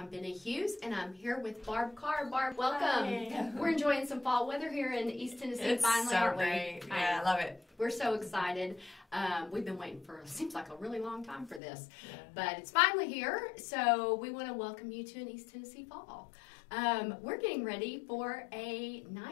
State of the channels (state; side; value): drops out; right; at 11.6 s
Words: Benna Hughes and I'm here with Barb Carr. Barb, welcome. Hi. We're enjoying some fall weather here in East Tennessee. It's finally, so aren't we? great. Yeah, I love it. We're so excited. We've been waiting for, seems like a really long time for this, Yeah. but it's finally here. So we want to welcome you to an East Tennessee fall. We're getting ready for a